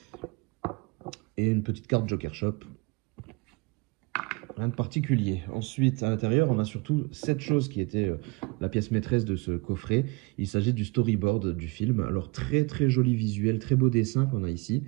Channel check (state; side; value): quieter; left; 27.3 dB